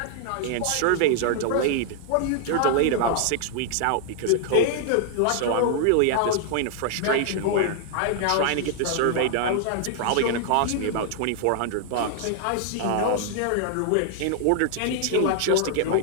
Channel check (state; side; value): different; both; correlation 0.00